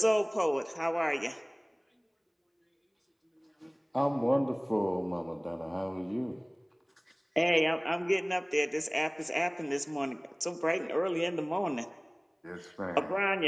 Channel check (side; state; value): both; identical; correlation 1.00